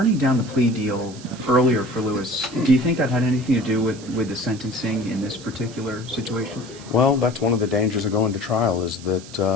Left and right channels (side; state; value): right; noise; hiss, 18 dB below the sound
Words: down the plea deal earlier for Lewis, do you think that had anything to do with the sentencing in this particular situation? well, that's one of the dangers of going to trial is